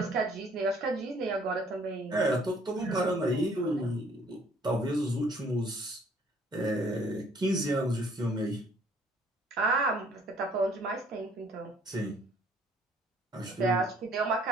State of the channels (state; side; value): normal; both; correlation 0.60